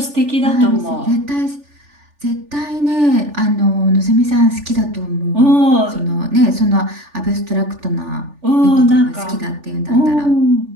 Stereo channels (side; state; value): left; late; 3.4 ms